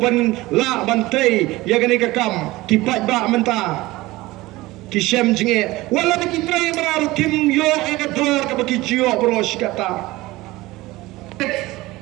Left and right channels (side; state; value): left; quieter; 19.4 dB